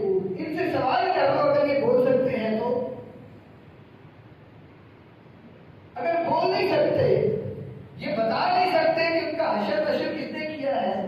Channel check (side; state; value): both; identical; correlation 1.00